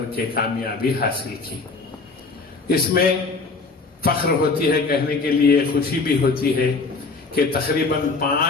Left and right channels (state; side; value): quieter; right; 4.1 dB